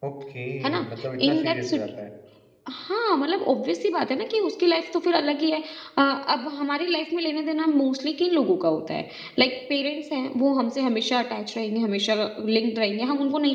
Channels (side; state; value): both; identical; correlation 1.00